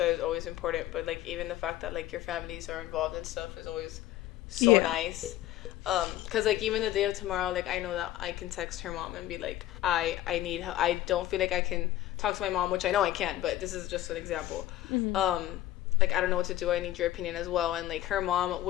is always important, but like even the fact that like your families are involved and stuff is always so nice. Because like even the day of tomorrow, like I know that I can text her mom and be like, I need help. I don't feel like I can talk to my mom, which I know I can't, but this is just an example. Like I don't know what to do, I need your opinion as well. And like her mom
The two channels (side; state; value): right; quieter; 14.3 dB